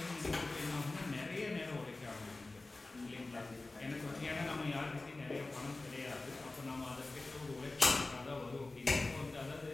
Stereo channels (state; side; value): quieter; right; 3.2 dB